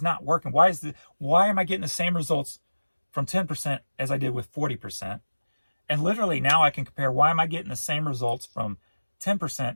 it not working? Why am I getting the same results from 10% as I did with 40%? And literally now I can compare, why am I getting the same results from 10%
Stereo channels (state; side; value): inverted; both; correlation -1.00